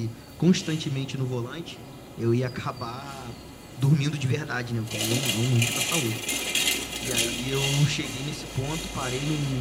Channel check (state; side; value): identical; both; correlation 1.00